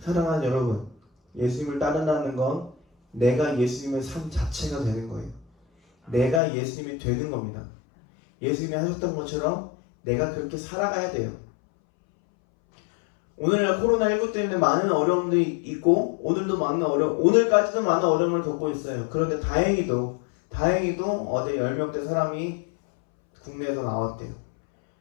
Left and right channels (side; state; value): right; drops out; at 6.4 s